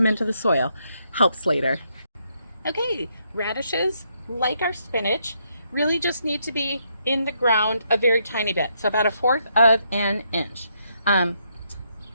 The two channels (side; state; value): both; inverted; correlation -0.76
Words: into the soil. Helps later. Okay, radishes, like our spinach, really just need to be in the ground a very tiny bit, so about 1/4 of an inch. I